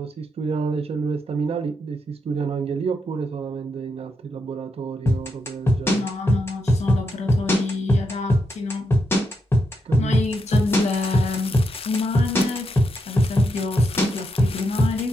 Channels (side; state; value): both; normal; correlation 0.82